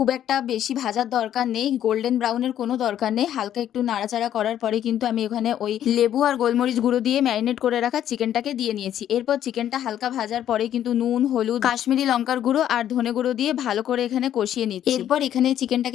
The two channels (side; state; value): right; quieter; 10.9 dB